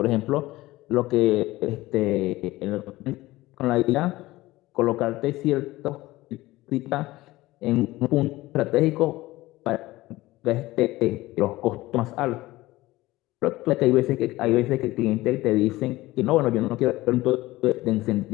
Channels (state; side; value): quieter; right; 18.3 dB